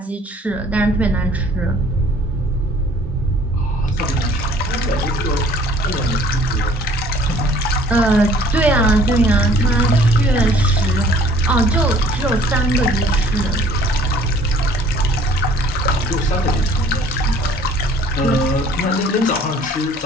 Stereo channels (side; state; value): both; normal; correlation 0.54